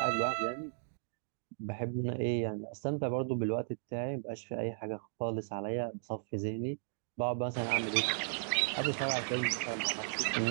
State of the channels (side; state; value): left; silent; digital silence